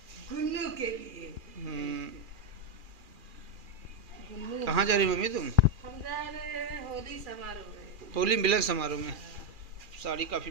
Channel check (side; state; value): left; late; 2.4 ms